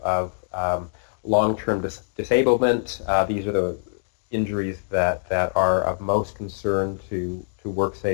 long-term disablement. These are the injuries that are of most concern to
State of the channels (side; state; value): right; silent; digital silence